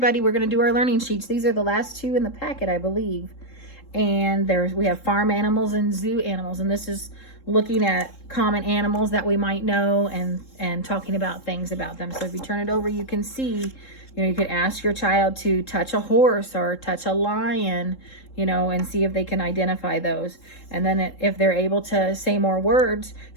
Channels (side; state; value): right; late; 3.7 ms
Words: we're going to do our learning sheets. These are the last two in the packet, I believe. And we have farm animals and zoo animals, and this is looking at common animals that we might know and talking about things about them. So if you turn it over, you can see, you could ask your child to touch a horse or touch a lion, and see if they can identify those. And then if they're able to say more words,